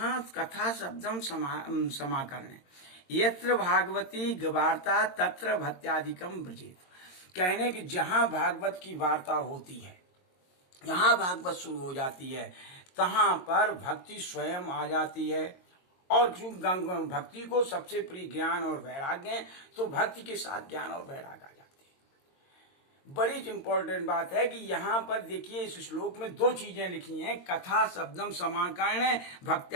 कथा शब्दम समाकर्णे, यत्र भागवती वार्ता तत्र भक्त्यादिकम ब्रजेत। कहने कि जहां भागवत की वार्ता होती है, जहां भागवत शुरू हो जाती है, तहां पर भक्ति स्वयं आ जाती है। और भक्ति को सबसे प्रिय ज्ञान और वैराग्य है, तो भक्ति के साथ ज्ञान और वैराग्य आ जाती है। बड़ी इंपॉर्टेंट बात है कि यहाँ पर देखिए इस श्लोक में दो चीजें लिखी हैं, कथा शब्दम समाकर्णे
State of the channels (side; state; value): right; late; 22 ms